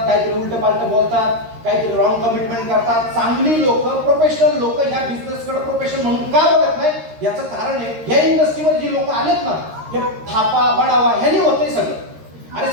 काहीतरी उलट पालट बोलतात, काहीतरी रॉंग कमिटमेंट करतात. चांगली लोक, प्रोफेशनल लोक ह्या बिझनेसकडे प्रोफेशन म्हणून का बघत नाही याचं कारण आहे ह्या इंडस्ट्रीमध्ये जी लोक आलेत ना हे थापा बडावा ह्यानी होतंय सगळं. अरे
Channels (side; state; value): left; late; 13 ms